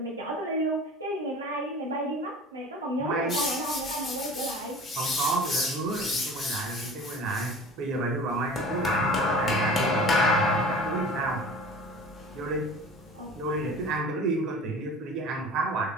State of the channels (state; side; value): normal; both; correlation 0.41